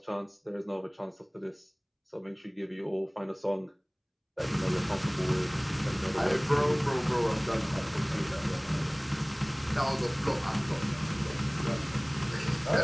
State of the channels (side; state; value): both; identical; correlation 1.00